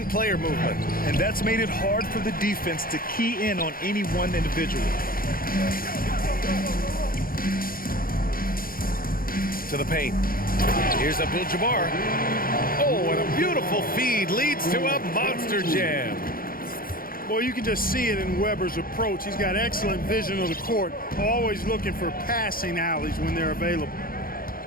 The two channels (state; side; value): late; right; 0.42 ms